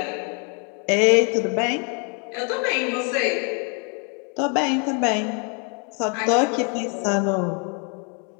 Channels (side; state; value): right; quieter; 37.4 dB